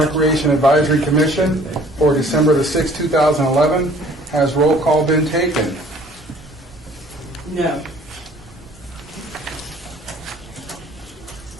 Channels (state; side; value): normal; both; correlation 0.54